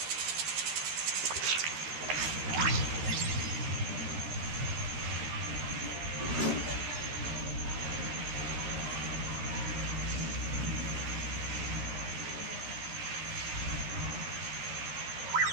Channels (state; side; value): late; left; 13 ms